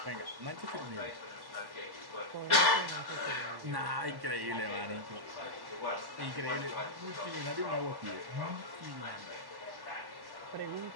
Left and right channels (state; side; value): late; left; 1.1 ms